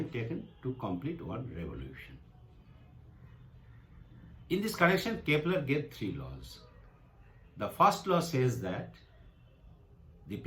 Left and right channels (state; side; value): identical; both; correlation 1.00